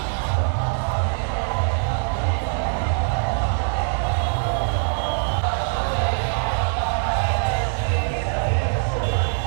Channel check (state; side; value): silent; left; digital silence